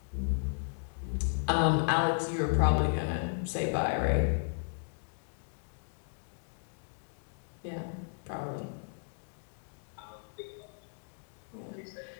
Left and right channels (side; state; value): right; silent; digital silence